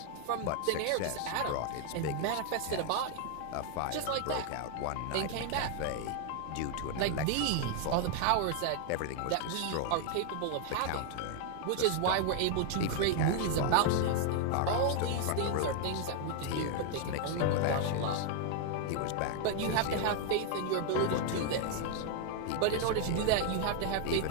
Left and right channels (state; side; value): different; both; correlation 0.00